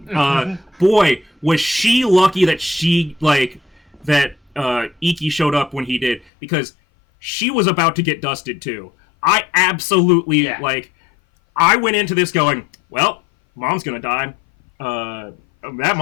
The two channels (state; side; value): drops out; right; at 6.2 s